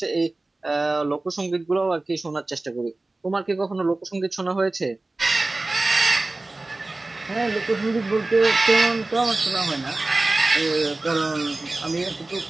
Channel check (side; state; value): left; quieter; 3.0 dB